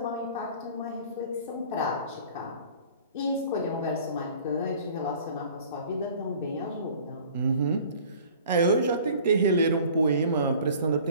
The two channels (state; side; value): inverted; both; correlation -0.48